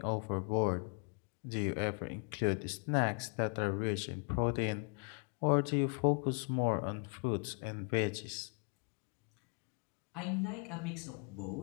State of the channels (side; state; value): right; quieter; 39.0 dB